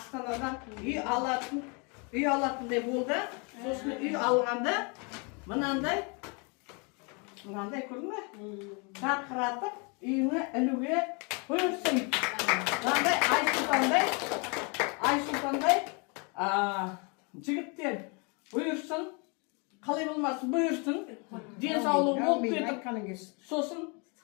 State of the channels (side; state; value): right; quieter; 33.2 dB